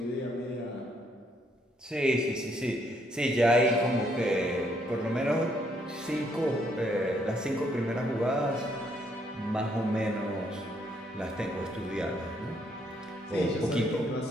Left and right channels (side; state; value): both; normal; correlation 0.71